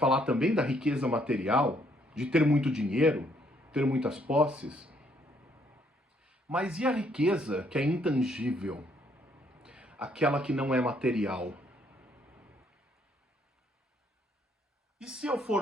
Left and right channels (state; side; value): normal; both; correlation 0.68